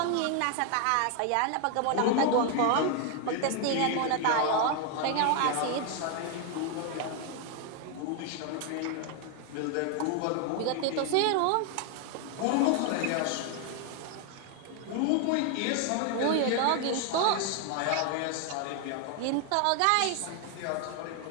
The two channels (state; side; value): different; both; correlation 0.01